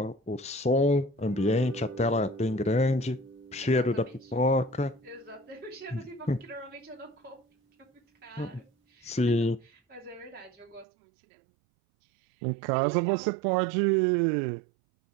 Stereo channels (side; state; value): left; drops out; at 10.9 s